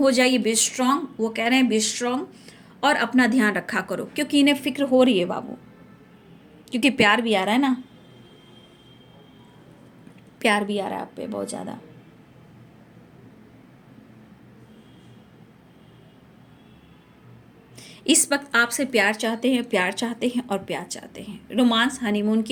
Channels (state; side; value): identical; both; correlation 1.00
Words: जाइए। बी स्ट्रांग, वो कह रहे हैं बी स्ट्रांग, और अपना ध्यान रखा करो क्योंकि इन्हें फिक्र हो रही है बाबू, क्योंकि प्यार भी आ रहा है ना, प्यार भी आ रहा है आप पे बहुत ज़्यादा। इस वक्त आपसे प्यार चाहते हैं, प्यार चाहते हैं और प्यार चाहते हैं। रोमांस, हनीमून